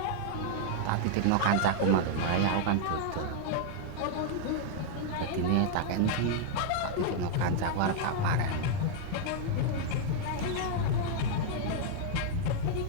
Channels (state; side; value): different; both; correlation 0.00